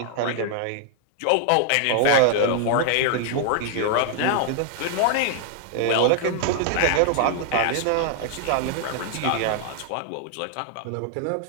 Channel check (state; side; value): different; both; correlation 0.00